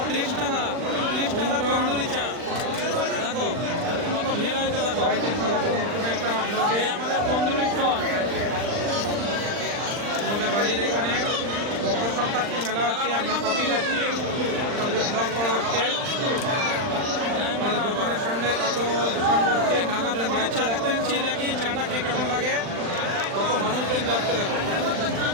30 টাকা, 30 টাকা তন্দুরি চা। দেখো কত ভিড় হয়েছে, দেখো একটা এই আমাদের তন্দুরি স্টল। আমাদের বাড়ির এখানে মকর সংক্রান্তি মেলা হচ্ছে, আমরা কপি খাচ্ছি, ব্লগ করা হচ্ছে। আমাদের দোকানের সামনে কত দোকান করছে, নাগাতে চা খেতে এসেছি, দেখি চাটা খেয়ে কেমন লাগে। কত মানুষজন যাচ্ছে দেখো।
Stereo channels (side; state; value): left; late; 39 ms